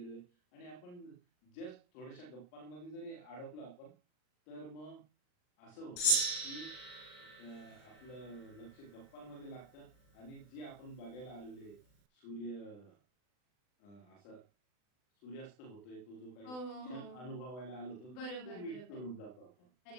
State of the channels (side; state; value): right; late; 39 ms